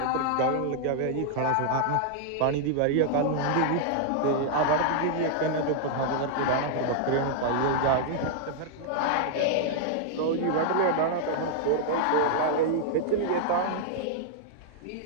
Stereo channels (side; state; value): both; different; correlation -0.01